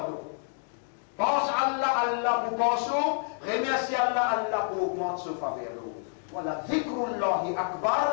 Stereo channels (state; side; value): silent; right; digital silence